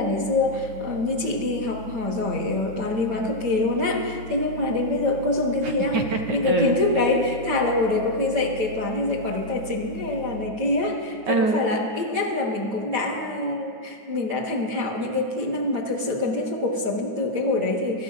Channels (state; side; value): late; left; 8.8 ms